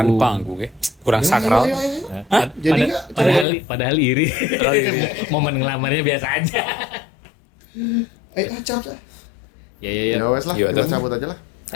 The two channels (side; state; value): right; drops out; at 3.5 s